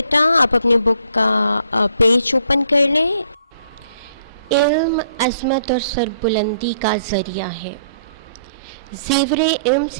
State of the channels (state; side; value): inverted; both; correlation -0.64